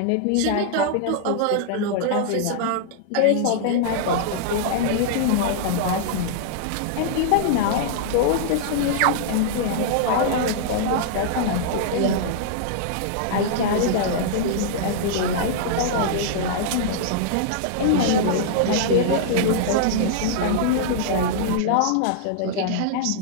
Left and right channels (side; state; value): both; different; correlation -0.01